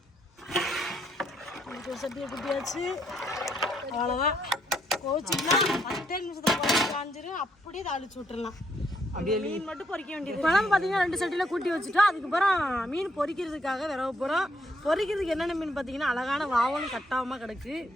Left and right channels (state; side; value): normal; both; correlation 0.73